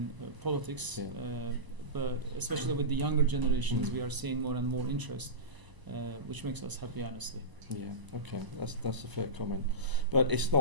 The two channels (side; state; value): left; late; 1.0 ms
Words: politics, but especially with the younger generations, we are seeing more and more interest, which makes us happy, honestly. Yeah, okay, that's a fair comment. But it's